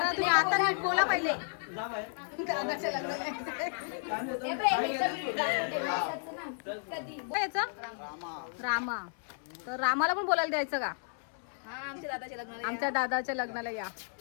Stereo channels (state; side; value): silent; right; digital silence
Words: तुम्ही आता नीट बोला पहिले दादाच्या याचा रामा तर रामाला पण बोलायला द्यायचं का आमच्या दादाच्या लग्नाला या